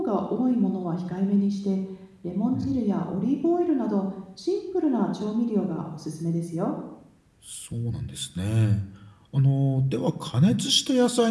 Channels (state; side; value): identical; both; correlation 1.00